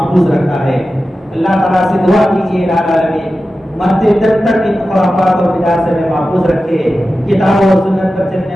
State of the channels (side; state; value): both; normal; correlation 0.93